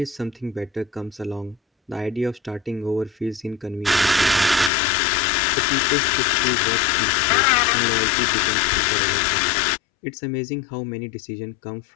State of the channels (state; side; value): drops out; right; at 4.7 s